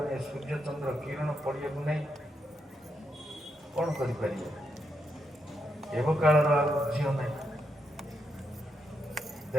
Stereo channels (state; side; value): normal; both; correlation 0.81